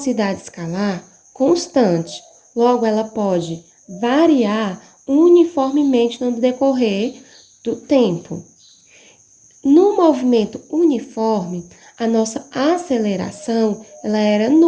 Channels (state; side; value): identical; both; correlation 1.00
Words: escalar constante. Logo, ela pode variar uniformemente no decorrer do tempo. No movimento uniforme, a nossa aceleração ela era